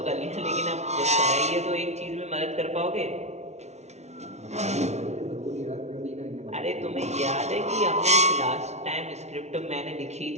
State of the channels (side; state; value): left; late; 0.32 ms